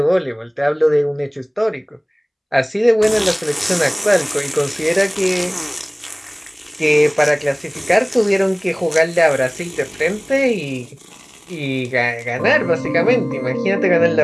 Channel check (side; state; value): both; identical; correlation 1.00